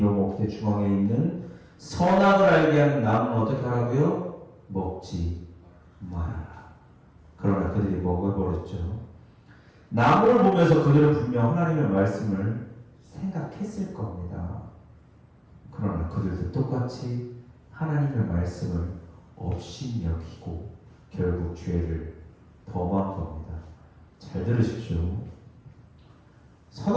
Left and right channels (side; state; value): both; identical; correlation 1.00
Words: 먹되 중앙에 있는 선악을 알게 하는 나무는 어떻게 하라고요? 먹지 말아라. 그러나 그들이 먹어버렸죠. 나무를 보면서 그들은 분명 하나님의 말씀을 생각했을 겁니다. 그러나 그들도 똑같이 하나님의 말씀을 없이 여기고 결국 죄를 범한 겁니다. 잘 들으십시오.